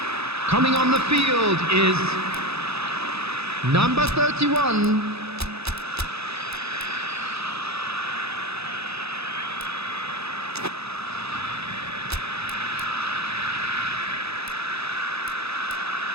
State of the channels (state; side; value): late; left; 0.79 ms